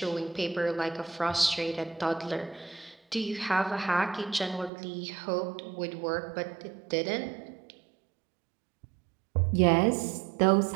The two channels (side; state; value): left; drops out; at 4.7 s